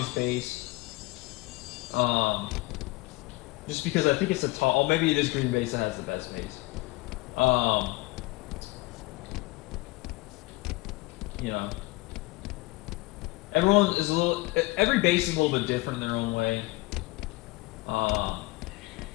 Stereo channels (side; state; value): right; quieter; 22.1 dB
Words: base. Just because I think it's a tall. Oh, maybe it is green base that has the best base. You know, everyone is every base is a little bit different in their own way.